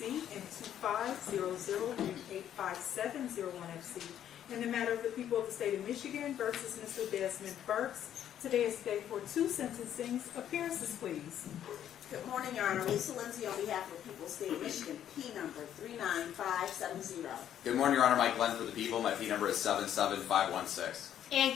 and 2500-85701FC in the matter of the people of the state of Michigan versus Mr. Desmond Burks. Today is day for two sentencings. Appearances, please. Good morning, Your Honor. Lisa Lindsay on behalf of the people of the state of Michigan, P number 39570. Good morning, Your Honor. Mike Glenn for the people. My P number is 77516. And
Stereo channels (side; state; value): right; quieter; 10.4 dB